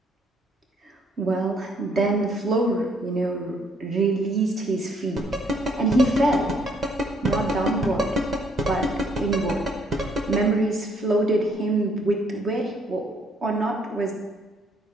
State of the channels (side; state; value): both; normal; correlation 0.67